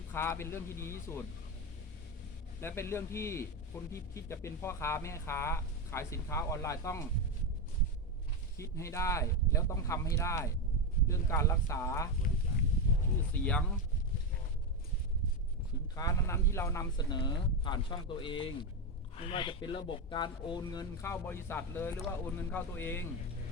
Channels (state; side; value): normal; both; correlation 0.11